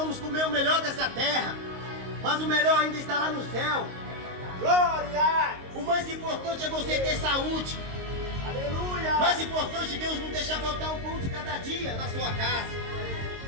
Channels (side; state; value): left; late; 22 ms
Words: comer o melhor dessa terra, mas o melhor ainda está lá no céu. Glória! O mais importante é você ter saúde. Aleluia! O mais importante é Deus não deixar faltar o pão de cada dia na sua casa.